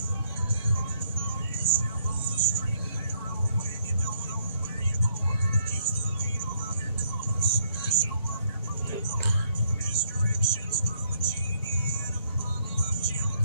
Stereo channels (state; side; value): inverted; both; correlation -0.69